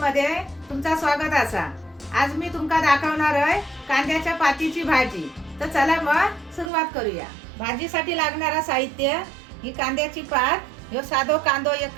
तुमचा स्वागत असा। आज मी तुमका दाखवणार आहे कांद्याच्या पातीची भाजी। तर चला मग सुरुवात करूया। भाजीसाठी लागणारा साहित्य ही कांद्याची पात, ह्यो साधो कांदो एक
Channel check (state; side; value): drops out; left; at 6.7 s